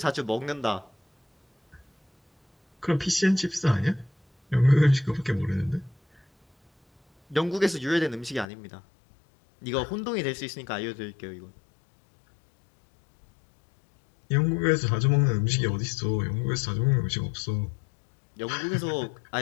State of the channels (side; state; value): right; drops out; at 8.5 s